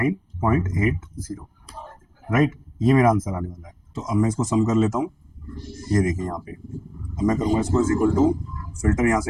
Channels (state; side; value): identical; both; correlation 1.00